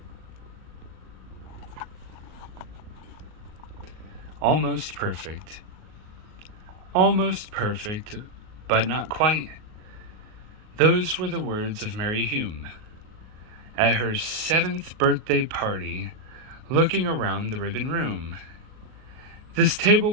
Almost perfect. Almost perfect, but not quite. Those were the words of Mary Hume at her 7th birthday party, looking around the ribbon room. This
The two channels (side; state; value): left; late; 38 ms